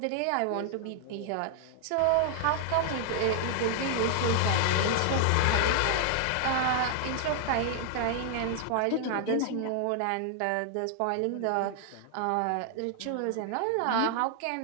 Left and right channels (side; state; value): both; different; correlation 0.00